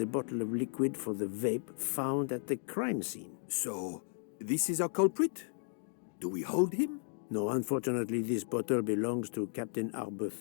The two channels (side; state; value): right; silent; 55 dB below the other